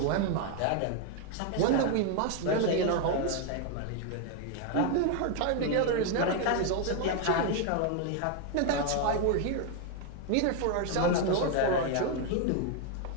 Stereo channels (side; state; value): both; different; correlation 0.01